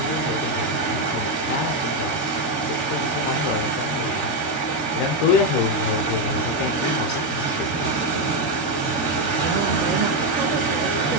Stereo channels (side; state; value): right; late; 13 ms